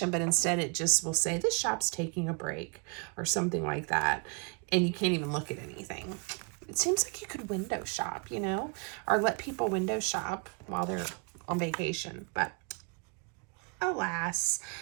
but instead it just will say the shop's taking a break or something like that, and you can't even look at anything. It seems like you could window shop, you know, or let people window shop while they're on vacation, but alas,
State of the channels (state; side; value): quieter; left; 35.7 dB